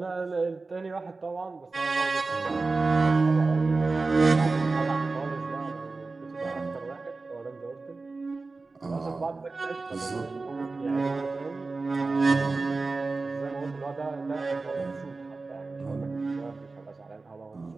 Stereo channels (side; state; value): left; quieter; 3.7 dB